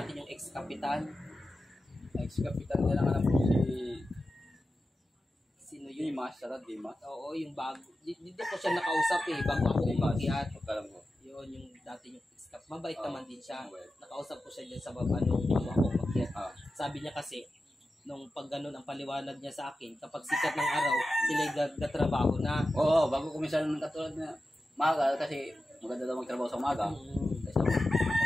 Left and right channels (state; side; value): normal; both; correlation 0.93